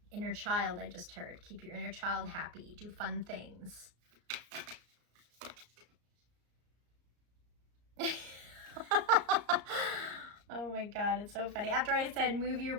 Inner child, I just heard. Keep your inner child happy. Do fun things. Oh my God, it's so funny. After I said move your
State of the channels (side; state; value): left; late; 34 ms